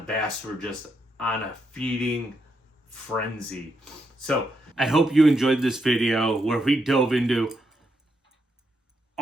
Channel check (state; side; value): normal; both; correlation 0.80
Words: were just on a feeding frenzy. So I hope you enjoyed this video where we dove into